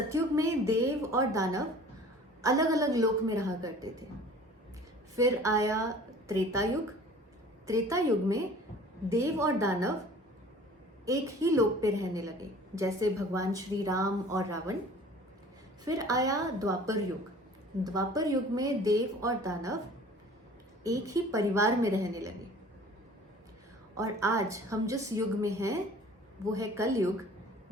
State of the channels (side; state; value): both; normal; correlation 0.47